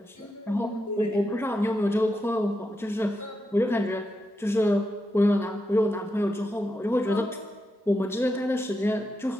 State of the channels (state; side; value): normal; both; correlation 0.86